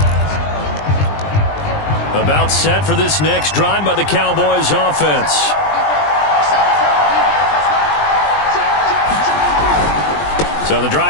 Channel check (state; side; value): late; right; 20 ms